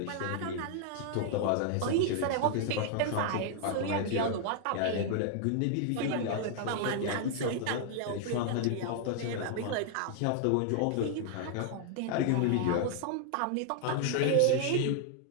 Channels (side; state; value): both; different; correlation 0.00